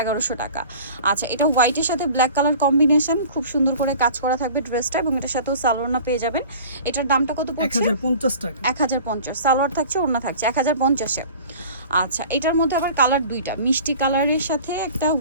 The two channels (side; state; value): both; inverted; correlation -0.43